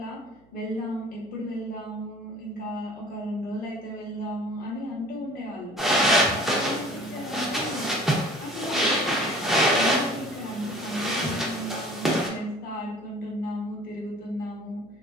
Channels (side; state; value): right; noise; hum, 29 dB below the sound